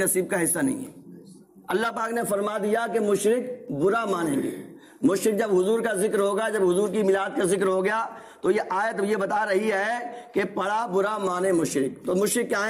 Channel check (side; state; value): both; identical; correlation 1.00